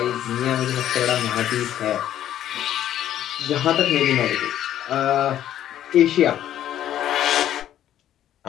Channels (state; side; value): quieter; right; 11.5 dB